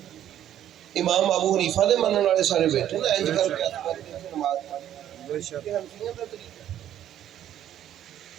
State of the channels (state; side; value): quieter; left; 11.2 dB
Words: امام ابو حنیفہ دے منن والے سارے بیٹھے نا انج کر کے نماز